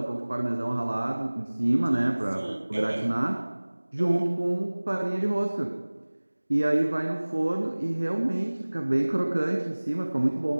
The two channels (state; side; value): inverted; both; correlation -1.00